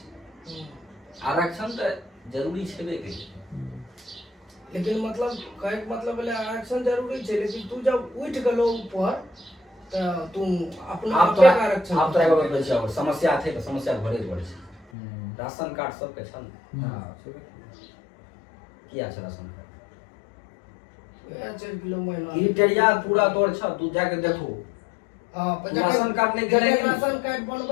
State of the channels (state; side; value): drops out; right; at 14.9 s